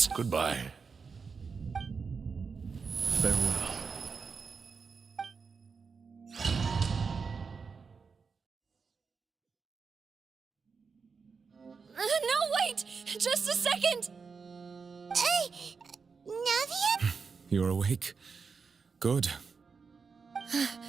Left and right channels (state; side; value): quieter; left; 5.3 dB